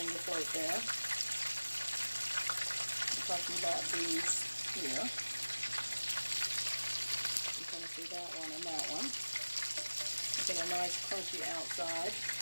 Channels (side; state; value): both; inverted; correlation -1.00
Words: to float there. I'm talking about these here. You kind of see that one and that one. Get a nice crunchy outside.